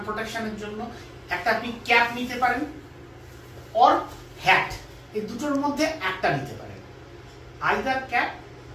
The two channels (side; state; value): both; identical; correlation 1.00